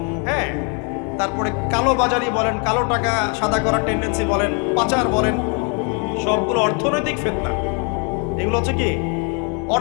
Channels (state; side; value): quieter; right; 36.2 dB